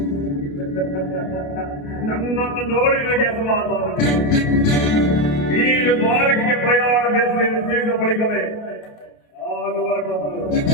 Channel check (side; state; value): right; late; 28 ms